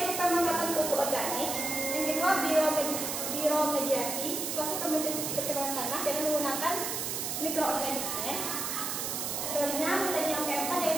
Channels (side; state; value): right; noise; hiss, 2 dB below the sound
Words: pemanfaatan pupuk organik. Yang kedua, bioremediasi, proses pencemaran tanah dengan menggunakan mikroorganisme. Selanjutnya, metode yang keempat